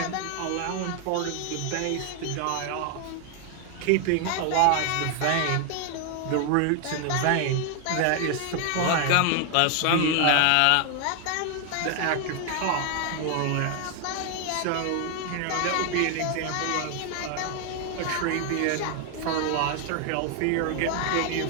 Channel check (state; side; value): different; both; correlation 0.00